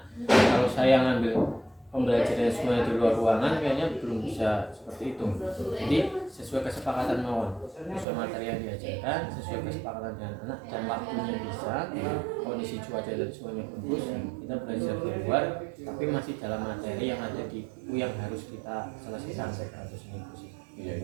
kalau saya ngambil pembelajaran semuanya di luar ruangan kayaknya belum bisa seperti itu. Jadi sesuai kesepakatan mawon, sesuai materi yang diajarkan, sesuai kesepakatan dengan anak dan waktunya bisa, kondisi cuaca dan semuanya bagus, kita belajar di luar tapi masih dalam materi yang ada di buku yang harus kita selesaikan harus ini.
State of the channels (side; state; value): left; drops out; at 8.1 s